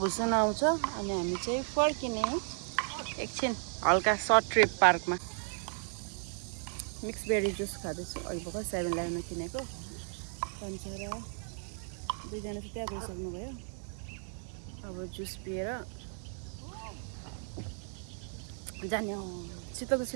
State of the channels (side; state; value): left; silent; 55 dB below the other